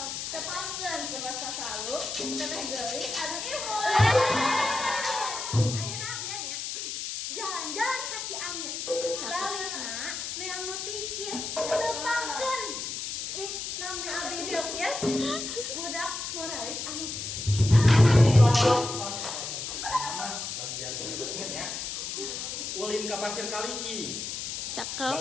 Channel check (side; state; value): left; noise; hiss, 5 dB below the sound